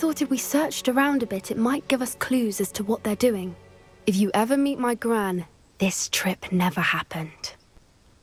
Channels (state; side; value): identical; both; correlation 1.00